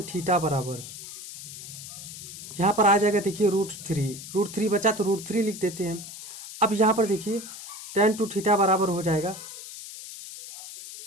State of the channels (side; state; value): left; noise; hiss, 12 dB below the sound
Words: थीटा बराबर यहाँ पर आ जाएगा, देखिए रूट थ्री बचा तो रूट 3 लिख देते हैं। अब यहाँ पर देखिए tan 2 थीटा बराबर हो जाएगा,